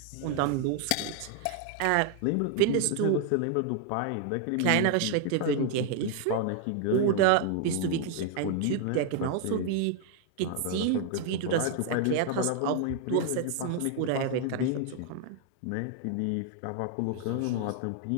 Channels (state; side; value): different; both; correlation 0.00